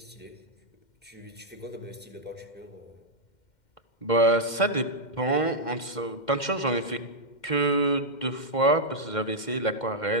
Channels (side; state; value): right; late; 2.1 ms